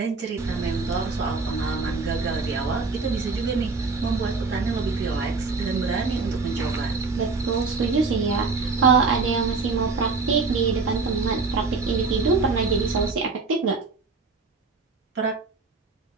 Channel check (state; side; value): quieter; left; 4.2 dB